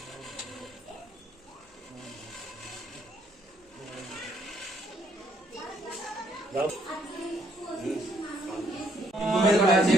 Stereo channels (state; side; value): normal; both; correlation 0.69